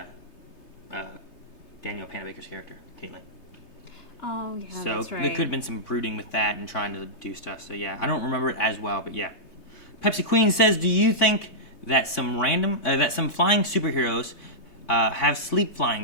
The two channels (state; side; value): late; right; 3.3 ms